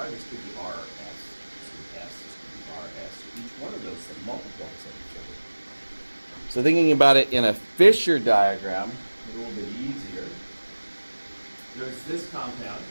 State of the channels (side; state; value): both; inverted; correlation -1.00